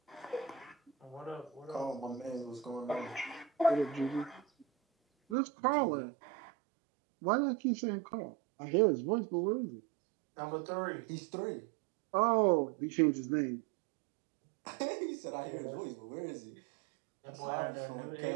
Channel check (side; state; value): left; drops out; at 5.4 s